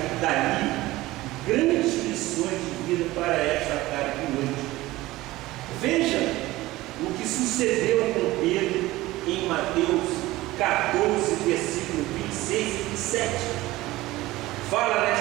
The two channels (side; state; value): left; quieter; 18.1 dB